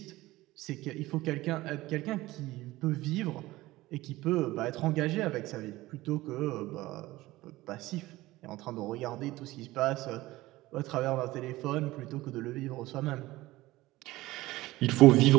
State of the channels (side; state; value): left; quieter; 18.2 dB